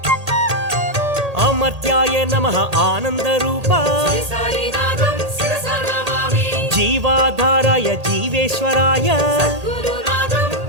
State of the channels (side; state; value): left; late; 1.8 ms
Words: అమర్త్యాయ నమః ఆనందరూప జీవాధారాయ జీవేశ్వరాయ